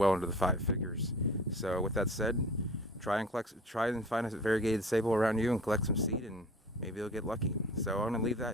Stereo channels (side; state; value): both; normal; correlation 0.43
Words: into the 5 figures. So with that said, try and find a variegated sabal around you and collect some seed, and maybe you'll get lucky. So I'm going to leave